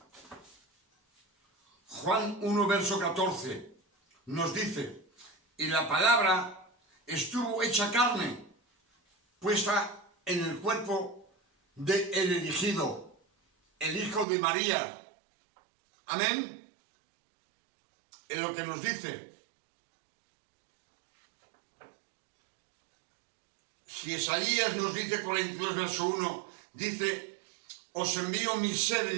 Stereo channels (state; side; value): drops out; left; at 14.2 s